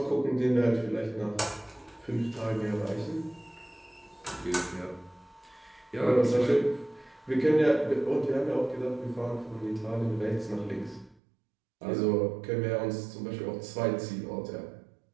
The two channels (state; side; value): drops out; left; at 11.2 s